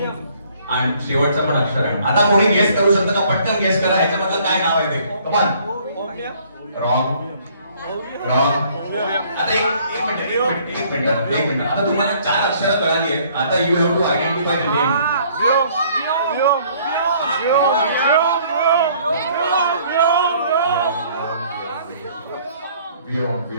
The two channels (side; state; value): both; inverted; correlation -0.60